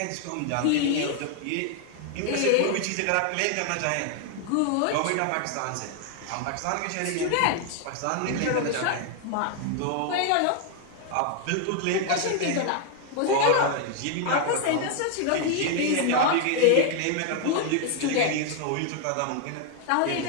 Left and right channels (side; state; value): both; different; correlation 0.00